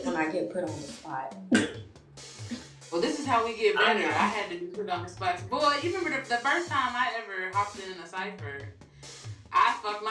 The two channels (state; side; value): identical; both; correlation 1.00